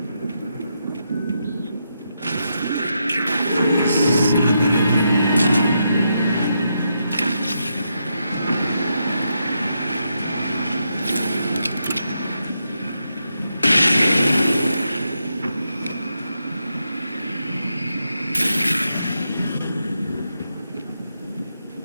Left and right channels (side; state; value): both; inverted; correlation -0.83